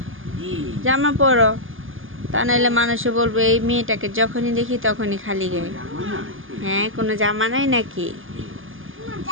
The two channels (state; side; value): late; left; 0.59 ms